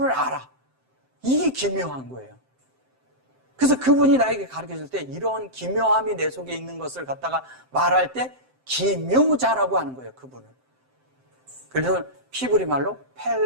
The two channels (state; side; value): late; left; 7.7 ms